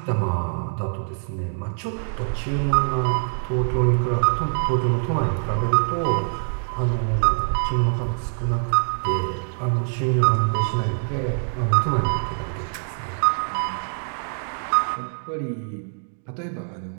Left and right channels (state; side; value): silent; left; digital silence